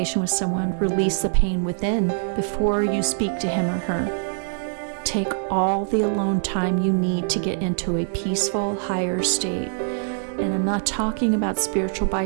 with someone, release the pain within before you speak to him or her. Take all the alone time you need to get into a peaceful, higher state. And I'm not talking about spiritual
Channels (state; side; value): silent; left; 63 dB below the other